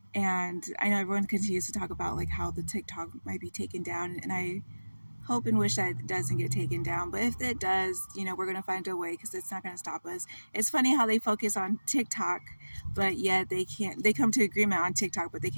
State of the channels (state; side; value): inverted; both; correlation -1.00